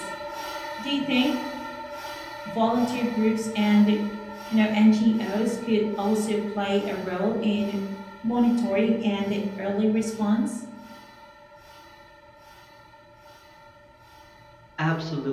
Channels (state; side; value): identical; both; correlation 1.00